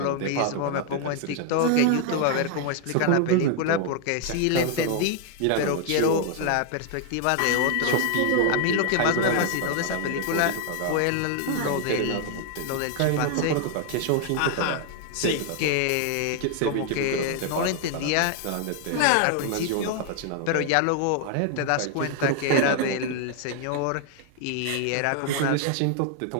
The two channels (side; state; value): both; different; correlation 0.00